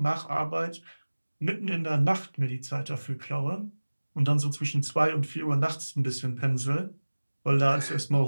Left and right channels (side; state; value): both; inverted; correlation -1.00